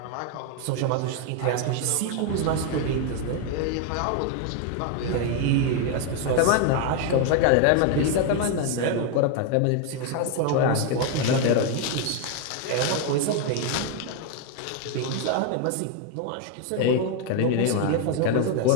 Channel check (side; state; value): both; different; correlation 0.01